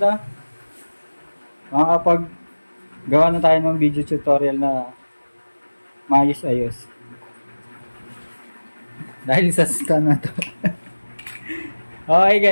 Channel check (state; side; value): inverted; both; correlation -1.00